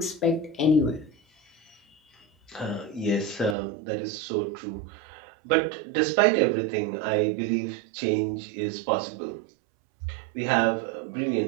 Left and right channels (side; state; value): left; drops out; at 3.6 s